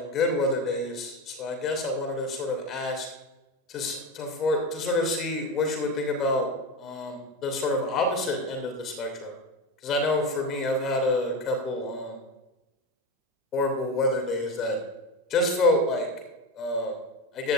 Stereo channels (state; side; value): normal; both; correlation 0.18